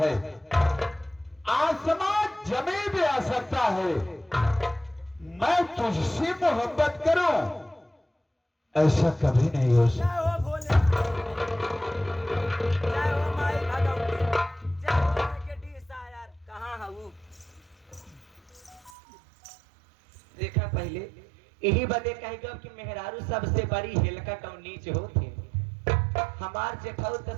आसमान जमीन पे आ सकता है, मैं तुझसे मोहब्बत करूं ऐसा कभी नहीं हो सकता। पहले यही बदे कहेगा कि मेहरारू सबसे बड़ी हेलकट और नीच होती। हमार जेठौत तो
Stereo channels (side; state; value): left; drops out; at 18.9 s